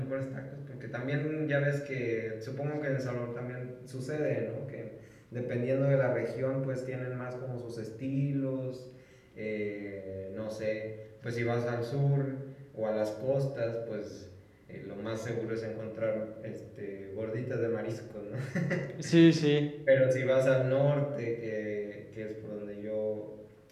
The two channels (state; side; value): identical; both; correlation 1.00